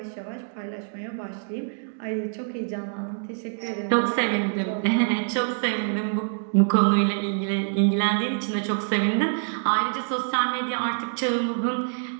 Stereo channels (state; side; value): silent; left; digital silence